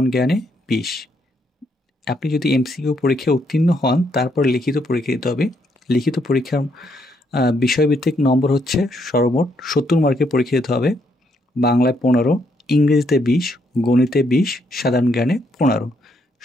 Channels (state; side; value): normal; both; correlation 0.74